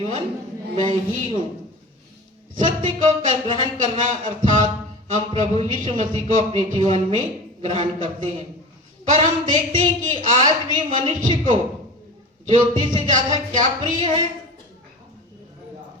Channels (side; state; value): both; normal; correlation 0.33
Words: मैं ही हूँ। सत्य को ग्रहण करना अर्थात हम प्रभु यीशु मसीह को अपने जीवन में ग्रहण करते हैं। पर हम देखते हैं कि आज भी मनुष्य को ज्योति से ज्यादा क्या प्रिय है?